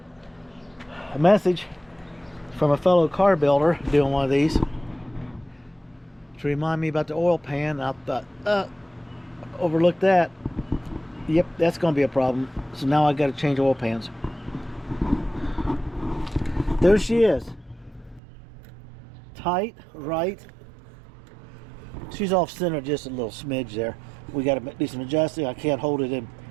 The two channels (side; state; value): left; drops out; at 18.2 s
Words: message from a fellow car builder doing one of these to remind me about the oil pan. I thought, overlooked that. Yep, that's going to be a problem. So now I got to change oil pans. There she is. Tight, right. She's off center just a little smidge there. We got to do some adjusting. I can't hold it in